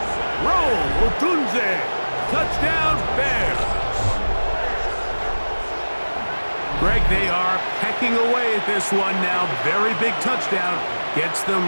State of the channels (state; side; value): inverted; both; correlation -1.00